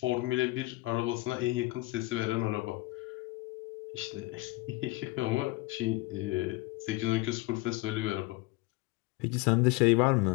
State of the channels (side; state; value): right; quieter; 20.9 dB